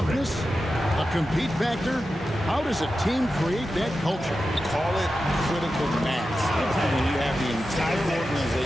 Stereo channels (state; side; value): normal; both; correlation 0.91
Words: a compete factor. How does a team create that culture? Call it critical mass. When you have the entire